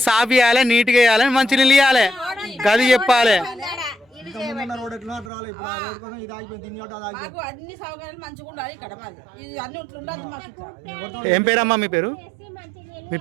సాఫ్ చేయాలి నీట్గా వేయాలి మంచినీళ్ళు ఇవ్వాలి గది చెప్పాలి ఏం పేరమ్మా మీ పేరు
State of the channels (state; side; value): drops out; left; at 5.3 s